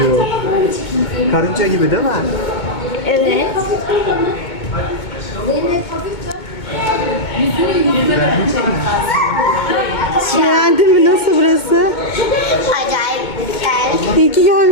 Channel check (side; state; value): right; late; 2.2 ms